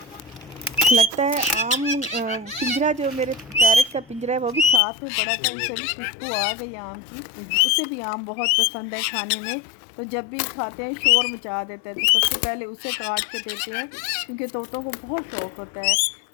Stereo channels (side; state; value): right; drops out; at 4.8 s